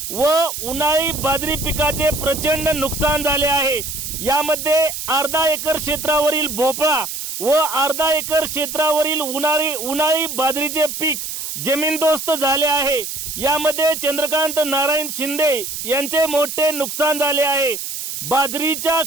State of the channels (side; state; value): right; noise; hiss, 6 dB below the sound